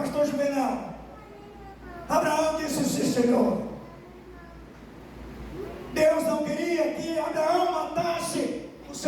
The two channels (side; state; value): both; identical; correlation 1.00